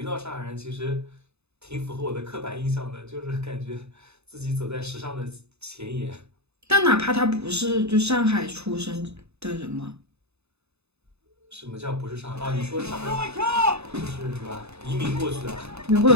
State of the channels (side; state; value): left; late; 0.80 ms